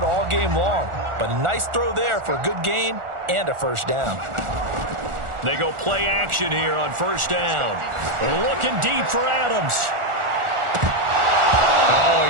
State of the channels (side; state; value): left; late; 1.4 ms